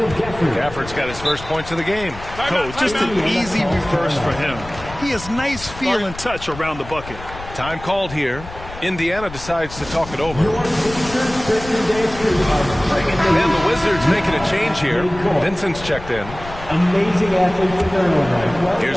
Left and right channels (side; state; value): left; noise; rumble, 14 dB below the sound